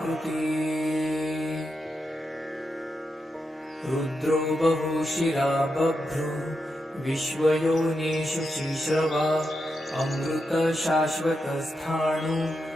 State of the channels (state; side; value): normal; both; correlation 0.86